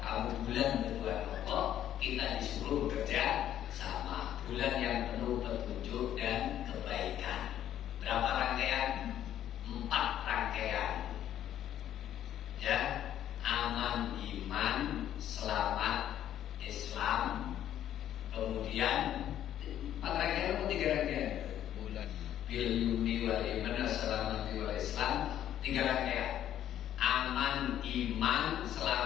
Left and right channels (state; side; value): quieter; right; 11.2 dB